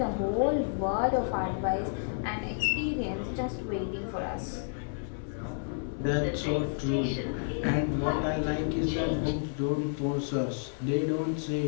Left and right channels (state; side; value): silent; right; digital silence